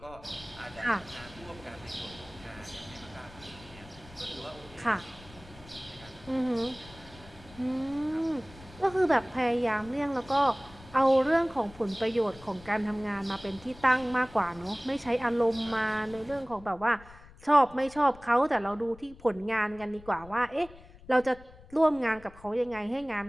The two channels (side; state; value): left; noise; rumble, 21 dB below the sound